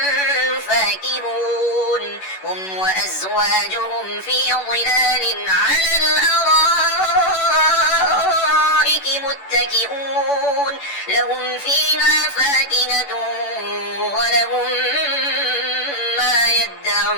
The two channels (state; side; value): late; right; 11 ms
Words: فاكهون هم وأزواجهم في ظلال على الأرائك الأرائك متكئون لهم فيها فاكهة ولهم ما